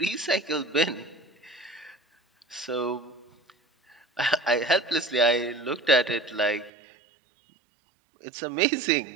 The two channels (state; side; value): drops out; left; at 6.7 s